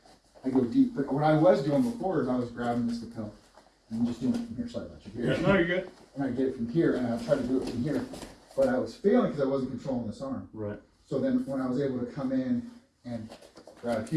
I go deep. But what I was doing before is I was grabbing this lapel and just doing it from here. Sorry about you. Here. No, you're good. And I get it from here, and I try to do it from here. But I was failing because I wasn't controlling this arm. Right. So then when I was able to come in and grab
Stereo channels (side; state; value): both; identical; correlation 1.00